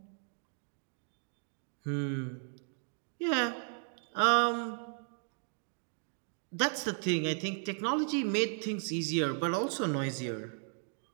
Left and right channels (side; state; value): left; silent; 54 dB below the other